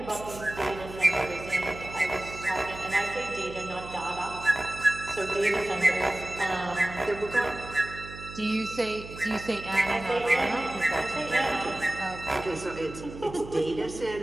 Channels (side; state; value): right; noise; hum, 13 dB below the sound